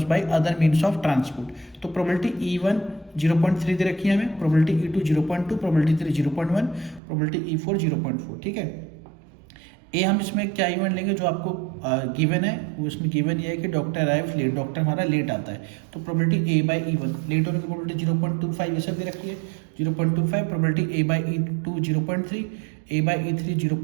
by other means of transport. तो प्रोबेबिलिटी E1 0.3 दे रखी है हमें, probability E2 0.2, probability 3 0.1, probability E4 0.4। ठीक है। ए हम इसमें क्या इवेंट लेंगे जो आपको गिवन है, वो इसमें गिवन ये है कि डॉक्टर अराइव लेट, डॉक्टर हमारा लेट आता है। तो probability A by E1, late होने की प्रोबेबिलिटी 0.25 ये सब दे रखी है 0.25, probability A by E2 0.3, A by E3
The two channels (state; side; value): drops out; left; at 7.0 s